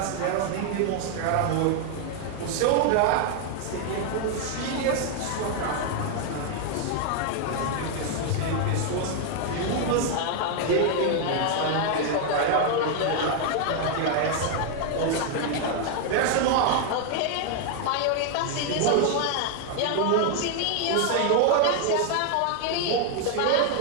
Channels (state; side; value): different; both; correlation 0.00